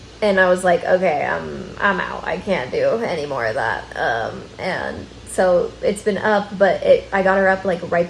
and I was like, okay, I'm out. I can't do any more of that. And so it's been up, but I got her up like right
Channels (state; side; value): identical; both; correlation 1.00